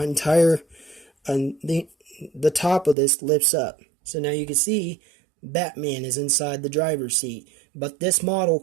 top of this lifts up. So now you can see Batman is inside the driver's seat. But this model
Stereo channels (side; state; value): left; drops out; at 3.0 s